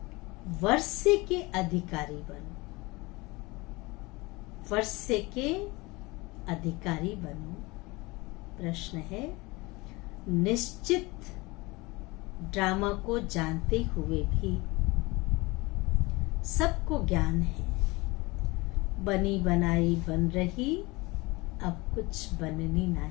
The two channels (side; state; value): right; quieter; 23.5 dB